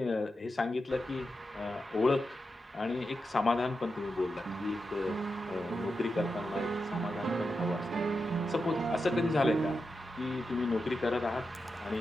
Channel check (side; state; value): both; normal; correlation 0.88